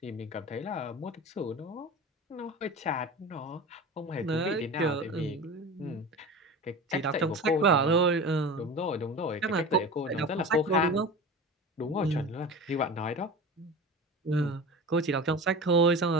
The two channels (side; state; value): both; normal; correlation 0.33